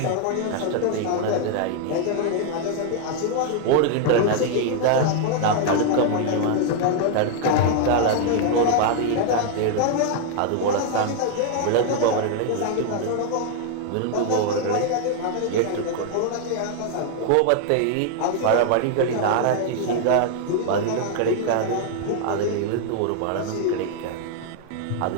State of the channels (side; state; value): both; different; correlation 0.00